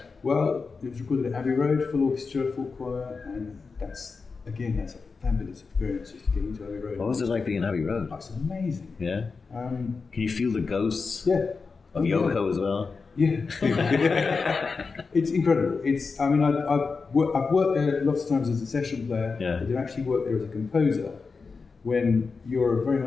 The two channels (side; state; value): right; quieter; 4.7 dB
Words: Well, it was recorded at Abbey Road, full orchestra, full choir, and that's a fabulous experience just to get into Abbey Road. What was it like being in Abbey Road? It's amazing. Yeah? Can you feel the ghosts of Yoko as well? Yeah. It's incredible. I've worked there lots of times as a session player. Yeah. I did actually work there as a composer. When you're very